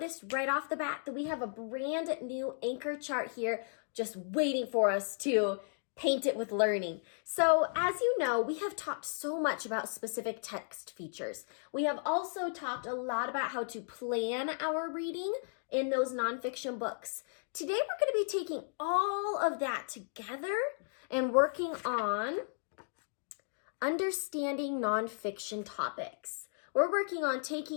right off the bat that we have a brand new anchor chart here just waiting for us to paint it with learning. So as you know, we have talked so much about specific text features. We have also talked a lot about how to plan our reading in those nonfiction books. Today we're going to be taking all of that together and working on understanding nonfiction topics. We're working on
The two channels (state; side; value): silent; right; digital silence